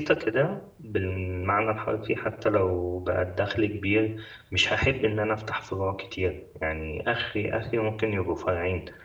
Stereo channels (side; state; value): both; identical; correlation 1.00